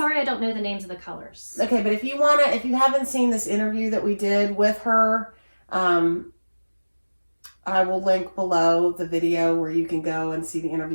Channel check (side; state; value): both; inverted; correlation -1.00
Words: I don't know the names of the colors. Okay, but if you haven't seen this interview that we did with her, I will link below the video where you can go and see the